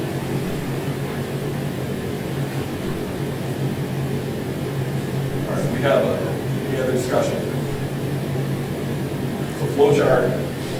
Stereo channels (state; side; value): identical; both; correlation 1.00